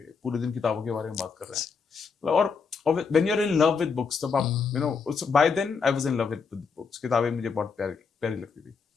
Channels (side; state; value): right; quieter; 5.4 dB